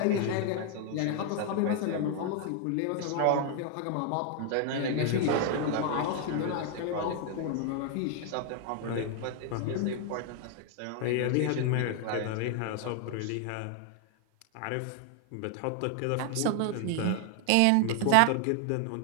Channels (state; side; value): different; both; correlation 0.00